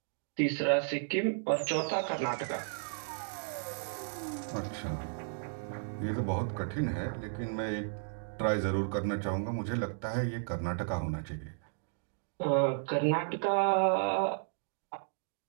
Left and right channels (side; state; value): left; silent; digital silence